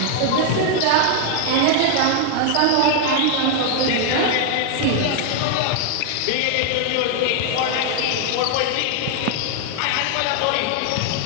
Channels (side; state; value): both; different; correlation 0.00